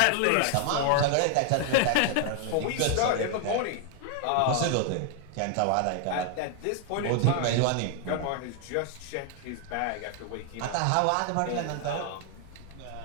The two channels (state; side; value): different; both; correlation 0.00